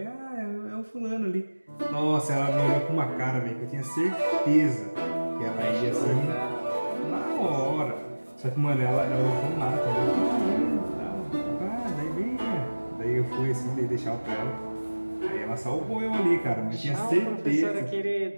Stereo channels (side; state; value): both; inverted; correlation -1.00